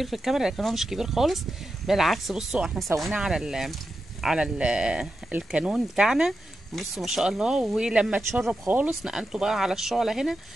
في الكاميرا لكن هو مش كبير خالص، بالعكس. بصوا احنا سويناه على الكانون بتاعنا. بصوا ما شاء الله. ولما اتشرب خالص نقلته بقى على الشعله هنا.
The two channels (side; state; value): both; normal; correlation 0.89